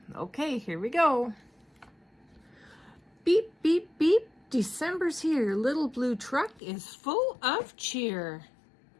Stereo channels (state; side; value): drops out; right; at 6.6 s